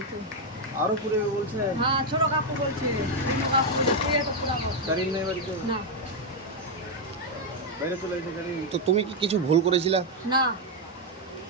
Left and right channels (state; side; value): normal; both; correlation 0.02